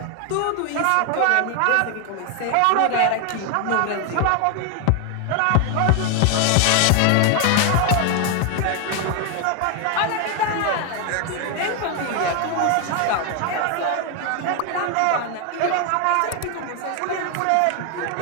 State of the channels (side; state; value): both; different; correlation 0.01